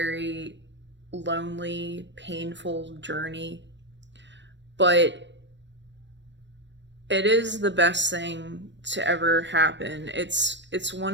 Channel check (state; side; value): late; left; 0.53 ms